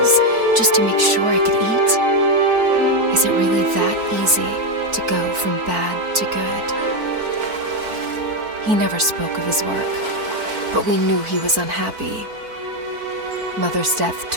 just to make sure I could eat? Is it really that easy to go from bad to good? He never spoke of his work, but we knew he was unhappy. Mother's death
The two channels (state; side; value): late; left; 4.5 ms